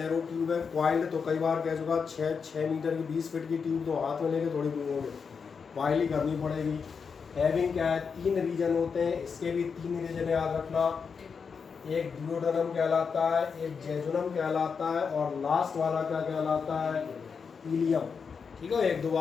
ट्यूब है। क्वाइल्ड तो कई बार कह चुका, 6 मीटर की 20 फीट की ट्यूब तो हाथ में लेके थोड़ी घूमोगे, वाइल ही करनी पड़ेगी। हैविंग क्या है, 3 रीजन होते हैं, इसके भी 3 रीजन याद रखना। एक डिओडनम कहलाता है, एक जेजुनम कहलाता है और लास्ट वाला क्या कहलाता है, इलियम। ठीक है, 1-2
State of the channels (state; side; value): quieter; right; 5.8 dB